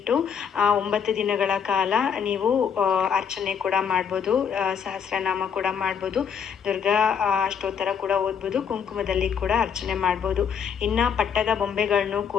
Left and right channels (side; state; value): right; quieter; 7.2 dB